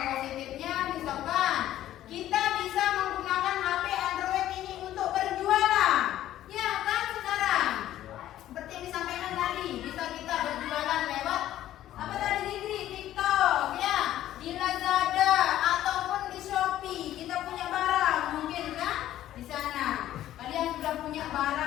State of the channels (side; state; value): right; quieter; 13.0 dB